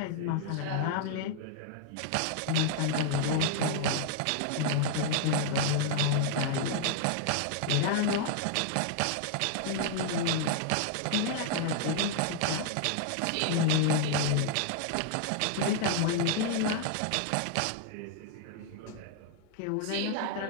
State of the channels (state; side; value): different; both; correlation 0.00